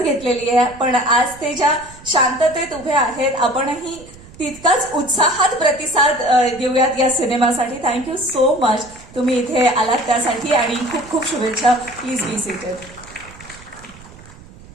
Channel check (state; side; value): noise; right; rumble, 21 dB below the sound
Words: घेतलेली आहे, पण आज ते ज्या शांततेत उभे आहेत, आपणही तितकाच उत्साहात प्रतिसाद देऊयात या सिनेमासाठी. थँक्यू सो मच तुम्ही इथे आलात त्यासाठी आणि खूप खूप शुभेच्छा. Please be seated.